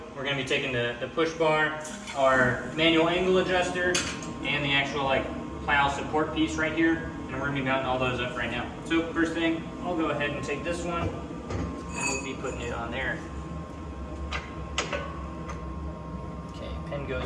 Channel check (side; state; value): both; identical; correlation 1.00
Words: we're going to be taking the push bar, our manual angle adjuster, and the actual like plow support piece right here, and we're going to be mounting all those up right now. So first thing, I'll go ahead and take this one, and we'll be putting it on there. Okay, pin